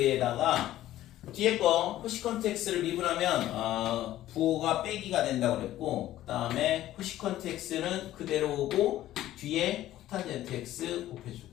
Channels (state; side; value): quieter; right; 13.9 dB